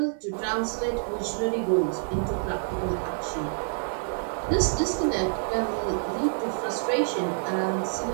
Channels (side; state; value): left; silent; digital silence